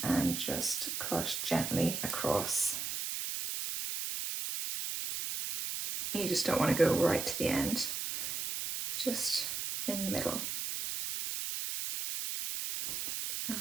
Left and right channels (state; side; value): noise; right; hiss, 3 dB below the sound